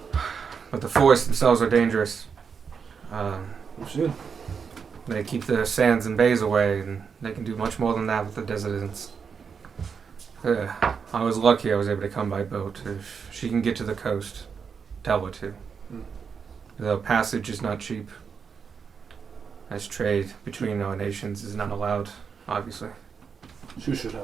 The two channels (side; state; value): left; quieter; 6.2 dB